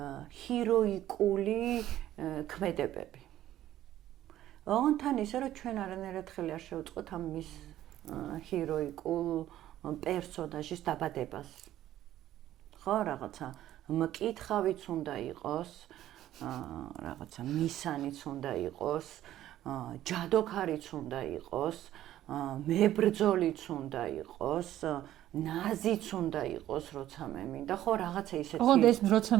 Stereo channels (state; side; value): quieter; left; 13.1 dB